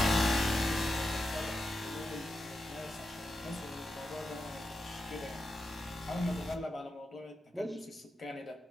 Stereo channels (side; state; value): both; normal; correlation 0.88